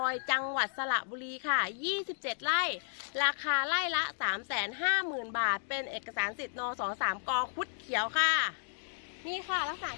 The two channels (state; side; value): silent; right; digital silence